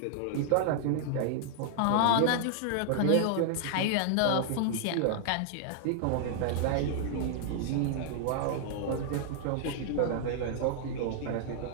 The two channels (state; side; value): different; both; correlation -0.01